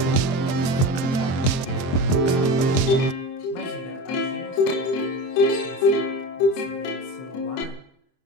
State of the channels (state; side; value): late; right; 23 ms